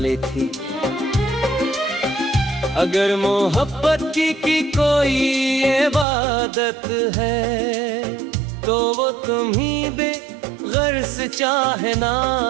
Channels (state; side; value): drops out; left; at 6.1 s